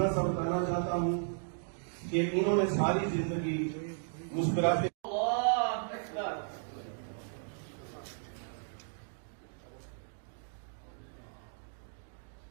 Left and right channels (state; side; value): silent; left; digital silence